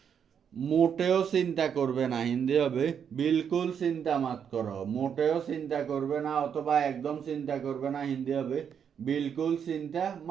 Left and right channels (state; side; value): quieter; left; 7.8 dB